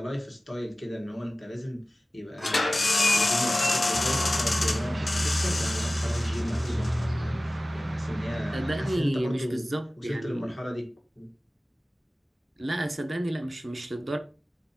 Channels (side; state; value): both; normal; correlation 0.97